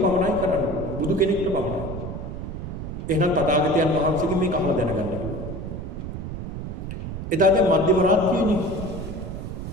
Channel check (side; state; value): right; noise; rumble, 7 dB below the sound